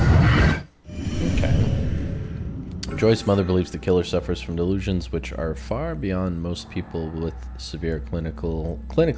Okay. Joy's mother believes the killer suffers from delusions which are far beyond most people with severe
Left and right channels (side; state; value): both; identical; correlation 1.00